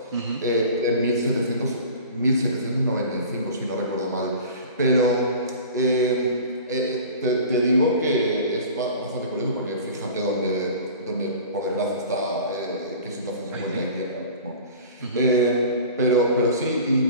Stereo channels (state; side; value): inverted; both; correlation -0.40